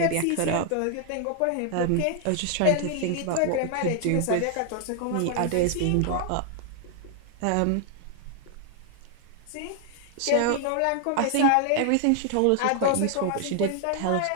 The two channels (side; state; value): both; different; correlation 0.00